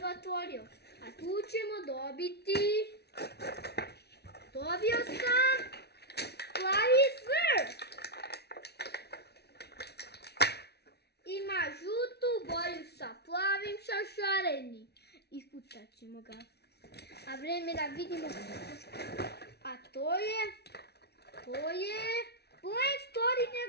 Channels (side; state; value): right; late; 0.48 ms